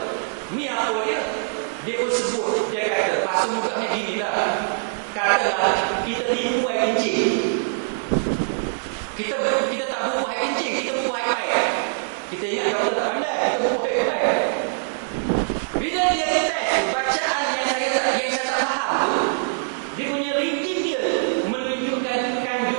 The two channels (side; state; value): left; silent; digital silence